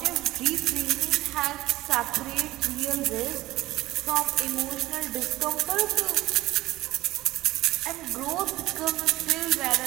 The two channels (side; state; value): left; quieter; 17.3 dB